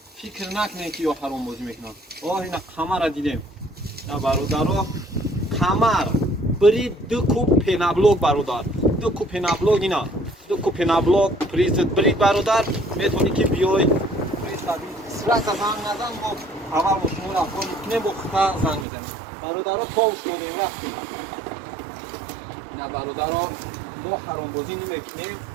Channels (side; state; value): left; drops out; at 18.9 s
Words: фикр накунем ки ё ҳаромбозӣ мекунам ина қамара дидем ина бародаро қамар бирид ду куб пенаблок бародар ду куб пенаблок ина ду куб пенаблок призит бирид бародар метавонӣ ки биёй призади сразу занг назан бо аввал бо шумо рафтор мекунем бо хута занг мезанем бародаро товш додем рафтем ина бародаро мо ҳаромбозӣ намекунем